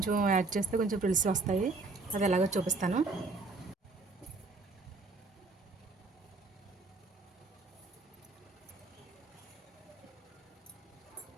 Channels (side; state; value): left; quieter; 3.6 dB